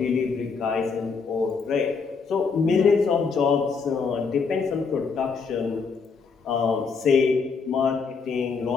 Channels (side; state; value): right; quieter; 5.2 dB